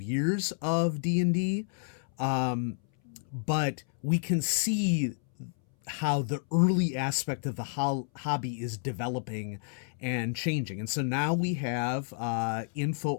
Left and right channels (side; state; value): right; silent; 58 dB below the other